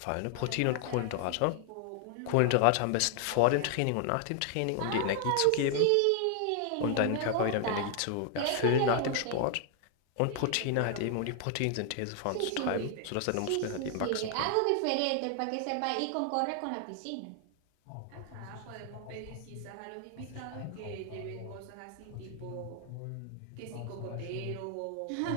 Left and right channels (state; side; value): different; both; correlation 0.00